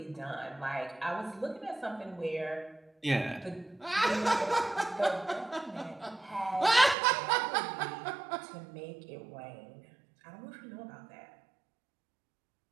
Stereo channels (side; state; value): left; drops out; at 7.0 s